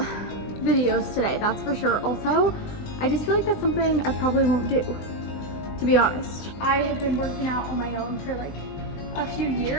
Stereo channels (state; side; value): late; right; 20 ms